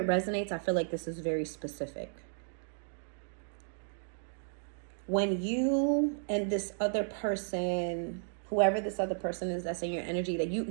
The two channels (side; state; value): left; silent; digital silence